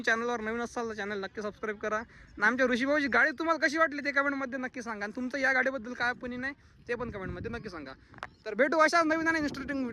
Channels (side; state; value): both; identical; correlation 1.00